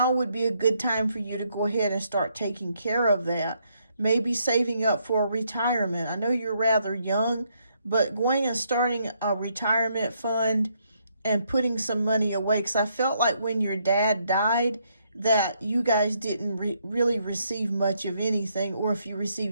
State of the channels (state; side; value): inverted; both; correlation -0.74